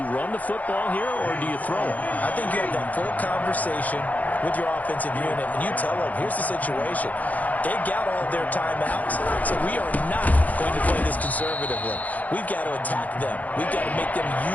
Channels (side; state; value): right; late; 0.078 ms